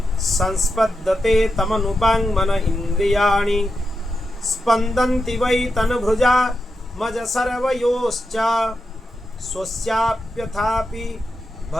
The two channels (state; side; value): normal; both; correlation 0.88